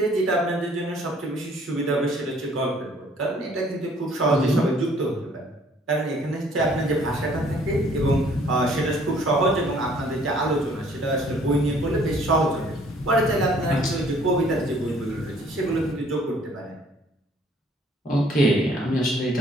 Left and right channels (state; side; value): normal; both; correlation 0.59